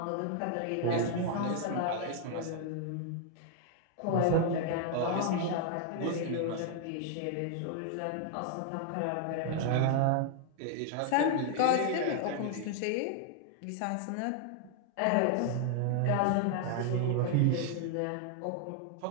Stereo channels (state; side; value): different; both; correlation 0.00